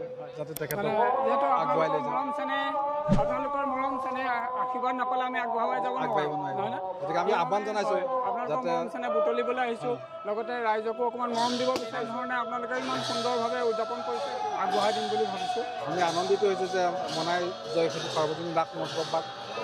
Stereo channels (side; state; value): both; identical; correlation 1.00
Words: যাতে তেখেতক আগুৱাই লৈ যায় আপোনালোকৰ মৰম চেনেহ আশীৰ্বাদ নাপালে আমি আগবঢ়াই যাব নোৱাৰিম গতিকে আমি আহ্বান জনাইছোঁ যাতে মৰম চেনেহ বুটলিবলৈ আহিছোঁ লগতে ৰাইজকো অকণমান মৰম দিব বিচাৰি ধৰণে আপোনালোকে ইমান সুন্দৰভাৱে উদযাপন কৰিছে আগবঢ়াই দিম বুলি ভাবিছোঁ আমি আনন্দিত হৈছোঁ যে মনাই জয়খিনিক সাৰ্বজনীন ৰাস মহোৎসৱ ভাগ